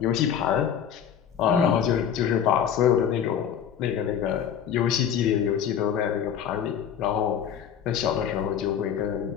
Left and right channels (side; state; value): right; quieter; 8.6 dB